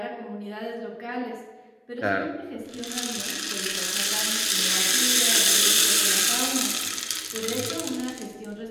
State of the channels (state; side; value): identical; both; correlation 1.00